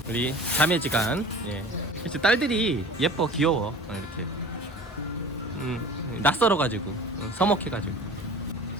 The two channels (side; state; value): both; normal; correlation 0.41